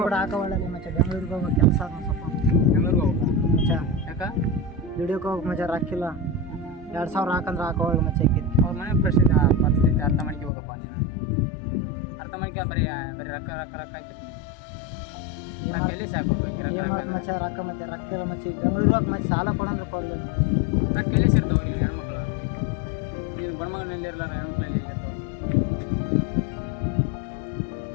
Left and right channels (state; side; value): drops out; right; at 10.5 s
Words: ಕೂಡ ಹಾಕೋಲ್ಲ ಮಚ್ಚ ಬೆಂಗಳೂರಿಗೆ ಹೋಗೋ ಕೆಲಸ ಸ್ವಲ್ಪ ಬೆಂಗಳೂರಿಗೆ ಹೋಗ್ಬೇಕು ಮಚ್ಚ ಯಾಕ ದುಡಿಯೋಕೆ ಹೋಗಕ್ಕೆ ಮಚ್ಚ ರೊಕ್ಕಿಲ್ಲ 2000 ಹಾಕಂದ್ರೆ ಹಾಕೋಲ್ಲ ಮಚ್ಚ ಅವ್ರ ಮನೆ ಪರಿಸ್ಥಿತಿ ಅರ್ಥ ಮಾಡ್ಕೊ ಹೋಗಪ್ಪ ನೀನು ಅರ್ಥ ಮಾಡ್ಕೊ ಬರೀ ರೊಕ್ಕ ರೊಕ್ಕ ರೊಕ್ಕ ಆಯ್ತು ಎಲ್ಲಿ ಸಾಕು ಏನು ಮಾಡ್ತು ಮಚ್ಚ ರೊಕ್ಕ ಮತ್ತೆ ರೊಕ್ಕಿಲ್ಲ ಮಚ್ಚ ಈಗ ಬೆಂಗಳೂರಿಗೆ ಹೋಗಿ ಮತ್ತೆ ಸಾಲ ಕೊಡಂದ್ರೆ ಕೊಡಲಿಲ್ಲ ರೊಕ್ಕ ಎಲ್ಲಿ ಸಿಗ್ತಾವೆ ನೀನು ಹೆಣ್ಮಕ್ಳು ನೀನು ಗಂಡ್ಮಗನಲ್ಲಿ ಇರಲಾರ ಹೆಣ್ಮಕ್ಳಲ್ಲಿ ಇರ್ತಾವೆ